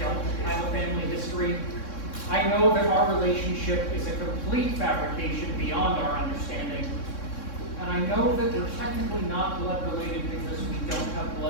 have a family history, fabrication beyond our understanding. And I know that we're technically not blood related because we don't have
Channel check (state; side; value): late; right; 3.6 ms